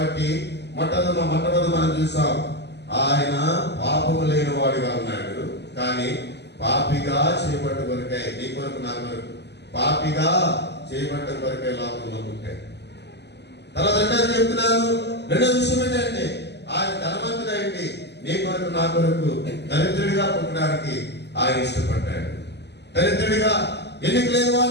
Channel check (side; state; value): right; late; 0.50 ms